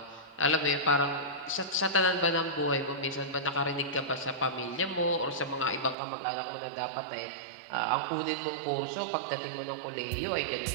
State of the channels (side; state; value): left; drops out; at 6.0 s